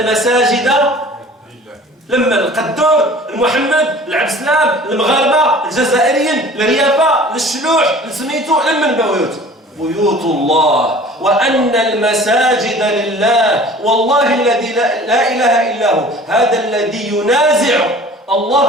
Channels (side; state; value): both; normal; correlation 0.46